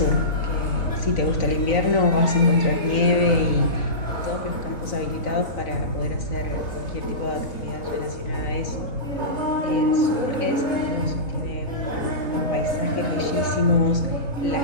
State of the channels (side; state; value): right; late; 3.9 ms